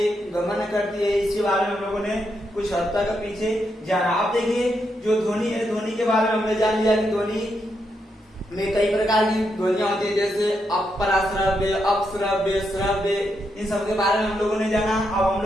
गमन करती है, इसके बारे में हम लोगों ने कुछ हद तक पीछे जाना। आप देखिए जो ध्वनि है, ध्वनि के बारे में हमने जान लिया कि ध्वनि में कई प्रकार की ध्वनियां होती है, जैसे अपराश्रव्य, अपश्रव्य, श्रव्य, इन सब के बारे में हम लोगों ने जाना। अब हम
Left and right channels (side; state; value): both; normal; correlation 0.81